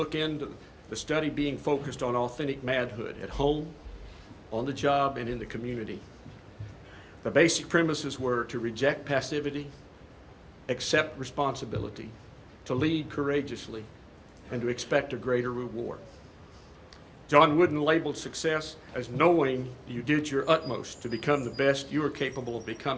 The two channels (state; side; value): identical; both; correlation 1.00